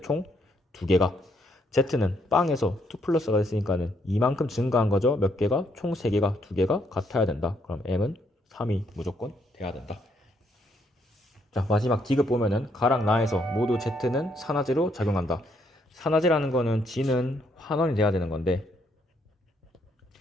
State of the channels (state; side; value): normal; both; correlation 0.73